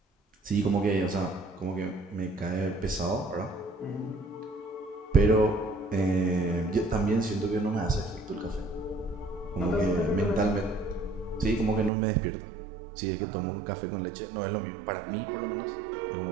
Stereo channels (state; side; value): drops out; left; at 11.9 s